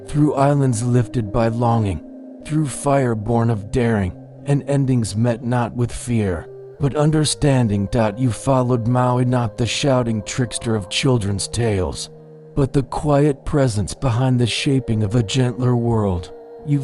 through islands lifted by longing, through fire born of daring, and endings met not with fear, but understanding. You followed Maui, not the shouting trickster of children's tales, but the quiet presence behind the shaping of a gentler world.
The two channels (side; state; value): both; identical; correlation 1.00